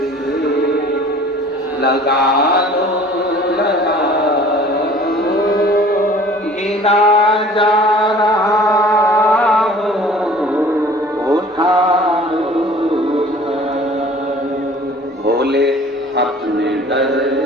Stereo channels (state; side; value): normal; both; correlation 0.48